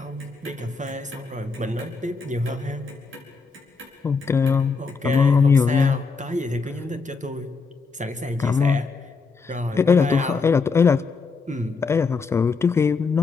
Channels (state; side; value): quieter; right; 4.7 dB